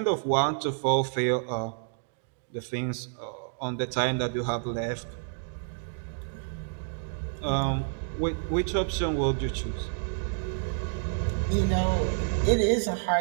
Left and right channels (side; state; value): left; silent; digital silence